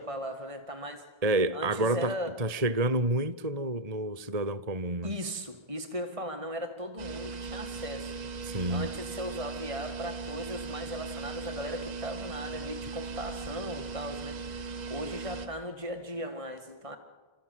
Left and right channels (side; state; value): left; late; 1.5 ms